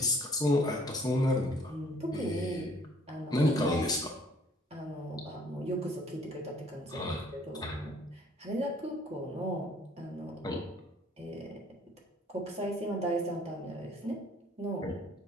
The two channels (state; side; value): normal; both; correlation 0.58